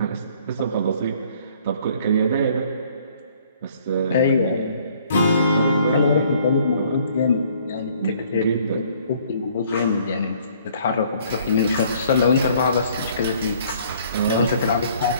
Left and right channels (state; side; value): inverted; both; correlation -0.60